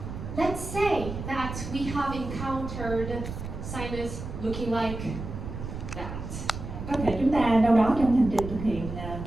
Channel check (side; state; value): right; noise; rumble, 8 dB below the sound